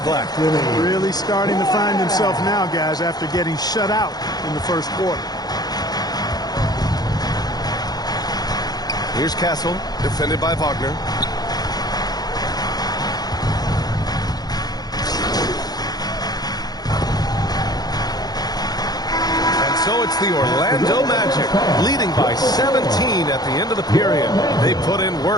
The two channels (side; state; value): right; late; 0.19 ms